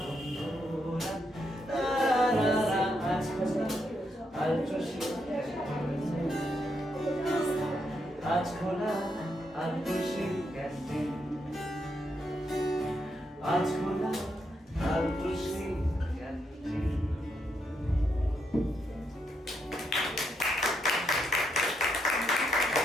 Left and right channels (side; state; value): both; normal; correlation 0.79